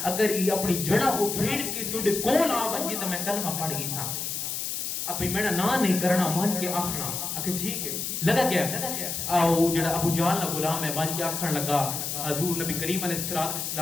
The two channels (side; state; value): left; noise; hiss, 3 dB below the sound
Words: اگر یہ اپنی جڑا وہ کھیڑ کے تھوڑے کول آ بن جی تو میں کلمہ پڑھ گئی تھا اب میرا نا نہیں کرنا مان کے آخنا کہ ٹھیک ہے لگا کیا او جڑا ابو جہل نا غلام ہے مان کے آخن لگا حضور نبی کریم علیہ